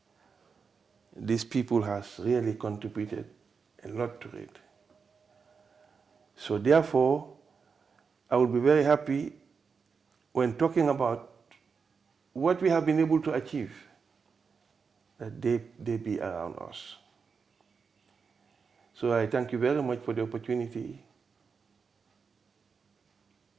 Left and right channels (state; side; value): quieter; left; 5.5 dB